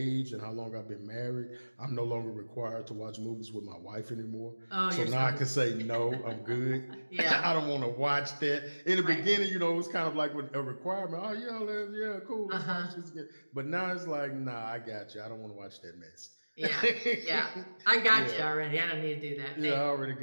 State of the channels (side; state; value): both; inverted; correlation -1.00